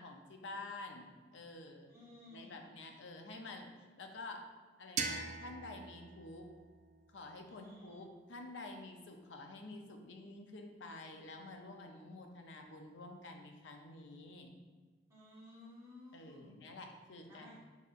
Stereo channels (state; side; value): normal; both; correlation 0.13